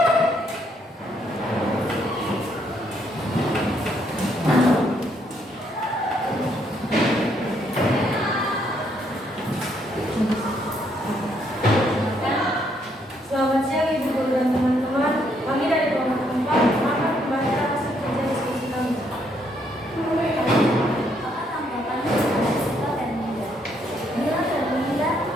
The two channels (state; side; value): normal; both; correlation 0.72